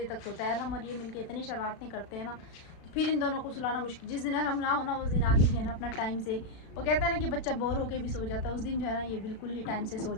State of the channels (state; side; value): late; right; 36 ms